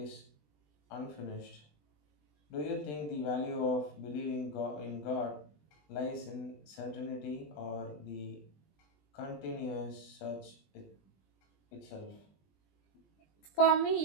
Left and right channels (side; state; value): right; late; 20 ms